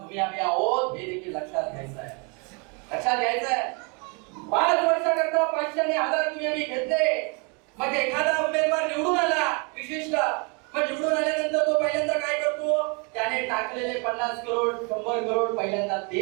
आम्ही आहोत हे देखील लक्षात घ्यायचं आहे. लक्षात घ्यायचं आहे. 5 वर्षाकरता 500 आणि 1000 तुम्ही आम्ही घेतले. मग एखादा उमेदवार निवडून आला विशिष्ट, मग निवडून आल्यानंतर तो पहिल्यांदा काय करतो? त्याने टाकलेले 50 करोड 100 करोड पहिल्यांदा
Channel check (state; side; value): quieter; left; 33.4 dB